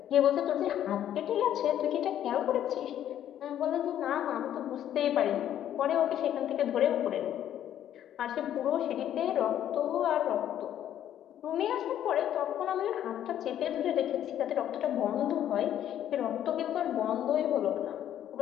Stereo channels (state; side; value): quieter; right; 10.9 dB